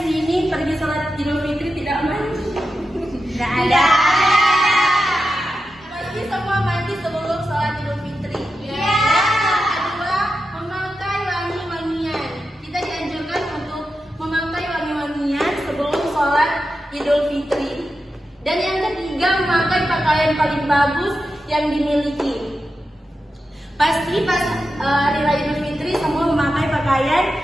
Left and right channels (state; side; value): normal; both; correlation 0.90